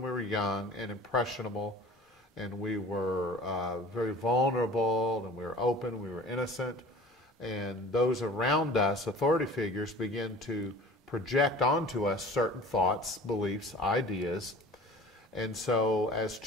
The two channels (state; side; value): normal; both; correlation 0.43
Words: we were young and impressionable, and we were very vulnerable, and we were open, we were innocent, and those around us, authority figures, begin to project onto us certain thoughts, beliefs, ideas, and so as